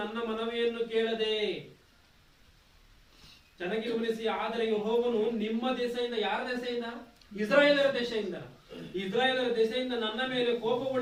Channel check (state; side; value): identical; both; correlation 1.00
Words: ನನ್ನ ಮನವಿಯನ್ನು ಕೇಳದೆ. ಚೆನ್ನಾಗಿ ಗಮನಿಸಿ. ಆದರೆ ಯೆಹೋವನು ನಿಮ್ಮ ದೆಸೆಯಿಂದ, ಯಾರ ದೆಸೆಯಿಂದ? ಇಸ್ರಾಯೇಲರ ದೆಸೆಯಿಂದ ನನ್ನ ಮೇಲೆ